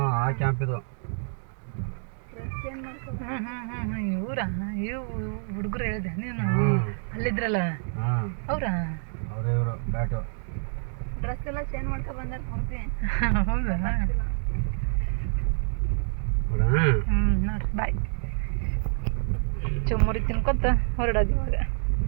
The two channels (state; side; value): silent; left; digital silence